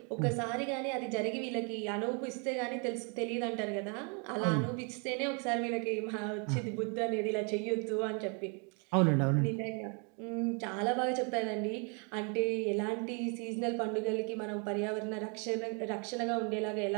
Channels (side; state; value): left; quieter; 36.1 dB